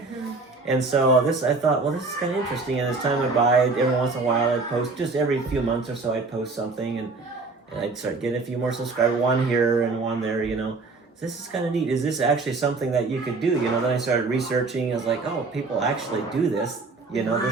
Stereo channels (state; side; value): quieter; left; 3.8 dB